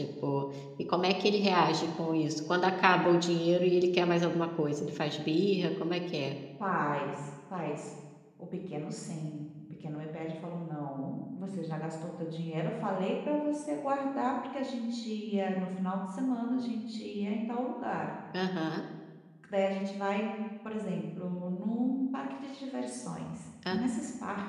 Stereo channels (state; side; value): identical; both; correlation 1.00